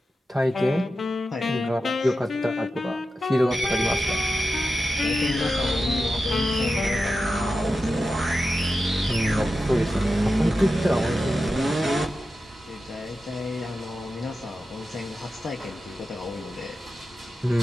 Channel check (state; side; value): normal; both; correlation 0.91